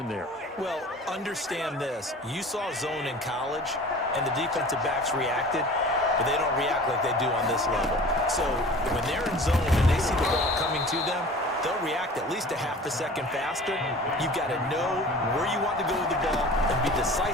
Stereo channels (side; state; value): both; normal; correlation 0.42